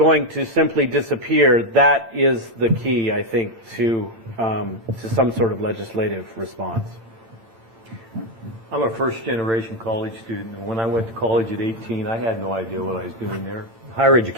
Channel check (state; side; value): late; left; 12 ms